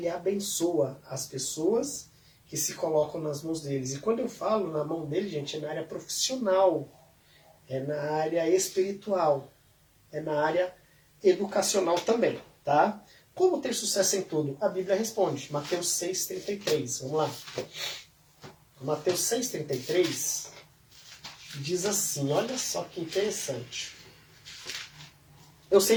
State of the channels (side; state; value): both; identical; correlation 1.00